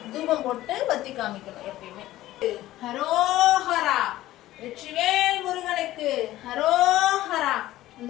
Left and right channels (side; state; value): right; quieter; 15.3 dB